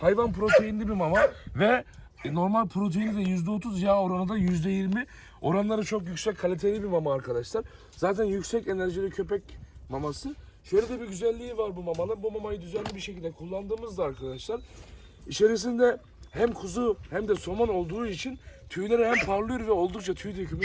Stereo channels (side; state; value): both; identical; correlation 1.00